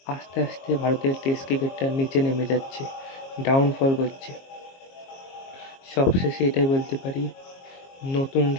আস্তে আস্তে ভারতের টেস্ট ক্রিকেটটা নিচে নেমে যাচ্ছে, ডাউনফল করছে। সবশেষে এটাই বলতে পারি,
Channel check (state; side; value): late; right; 22 ms